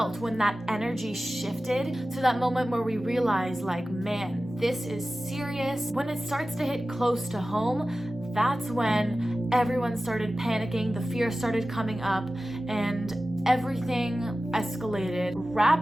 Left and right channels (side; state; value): both; normal; correlation 0.95